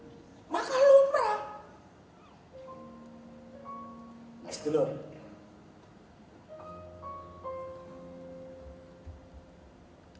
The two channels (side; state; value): both; identical; correlation 1.00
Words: Maka lumrah. Next dulu.